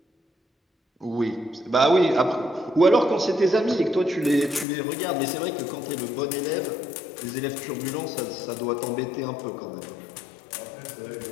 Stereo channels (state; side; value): drops out; right; at 4.7 s